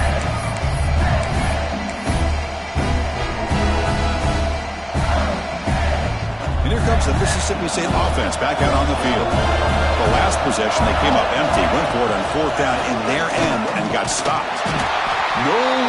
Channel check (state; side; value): identical; both; correlation 1.00